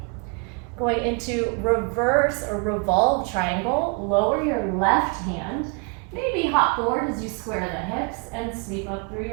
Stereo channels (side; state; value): left; quieter; 34.1 dB